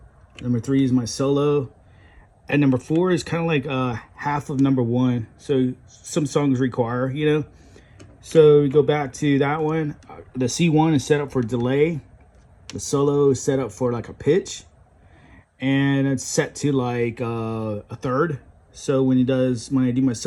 number three is my solo, and number four is kind of like half of number one. So some songs require, So we go back to that one. The C1 is set up for delay. The solo is set up for like a pitch, and it's set to like a third. So when I do my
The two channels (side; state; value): both; identical; correlation 1.00